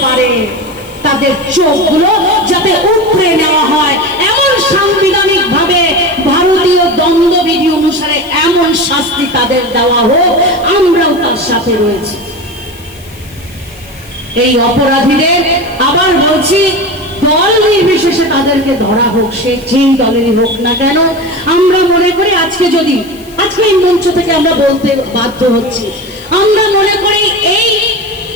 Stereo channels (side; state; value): left; noise; hiss, 23 dB below the sound